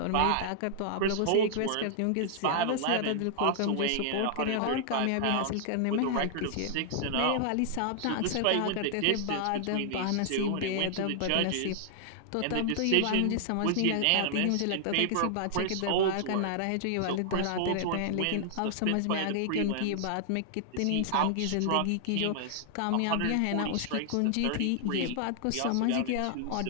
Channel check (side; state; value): both; different; correlation -0.01